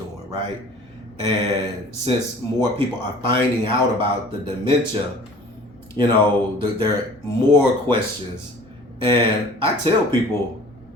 right? And since more people are finding out about the dementia, there are more questions. And I tell people,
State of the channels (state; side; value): normal; both; correlation 0.47